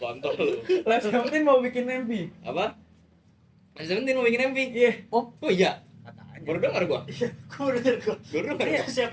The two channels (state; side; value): identical; both; correlation 1.00